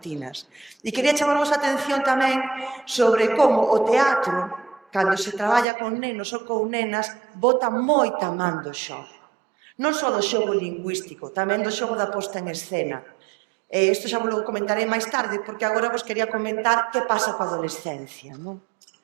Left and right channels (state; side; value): drops out; left; at 5.7 s